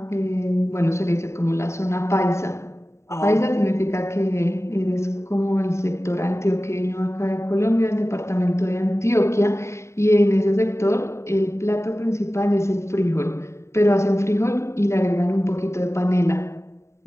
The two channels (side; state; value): right; late; 0.14 ms